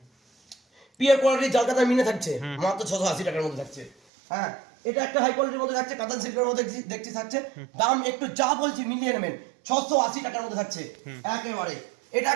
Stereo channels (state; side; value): drops out; left; at 4.0 s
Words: পিওর কোয়ালিটির জাল কাতা মিনে থাকছে, মাত্র 680 টাকার মধ্যে থাকছে। হ্যাঁ, এটা একটা হাই কোয়ালিটির মধ্যে থাকছে, কাতান সিল্কের মধ্যে দেখছি থাকছে, দাম একটু যা বলছি মিলিয়ে নেবেন, 680 টাকার মধ্যে থাকছে একেবারে। এটা